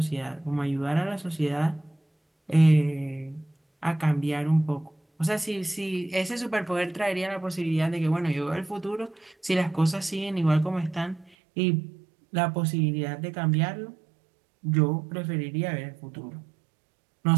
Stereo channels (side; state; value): left; drops out; at 11.3 s